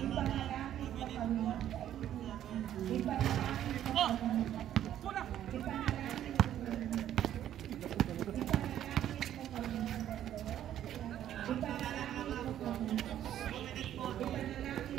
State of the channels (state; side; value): quieter; left; 11.3 dB